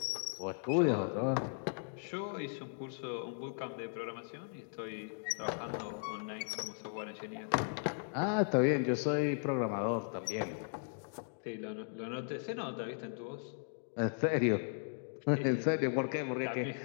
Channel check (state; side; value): silent; right; digital silence